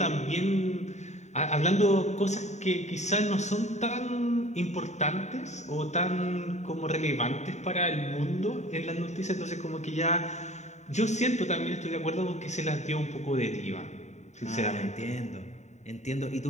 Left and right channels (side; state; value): right; late; 0.34 ms